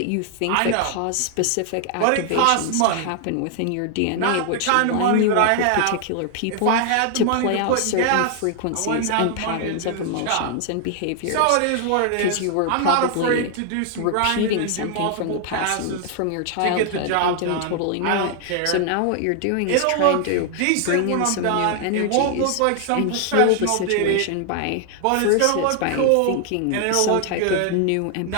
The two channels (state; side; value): different; both; correlation 0.00